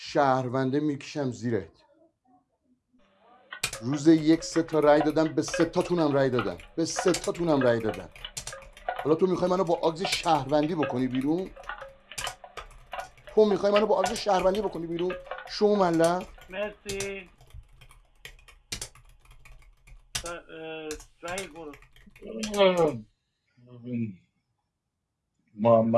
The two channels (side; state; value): both; identical; correlation 1.00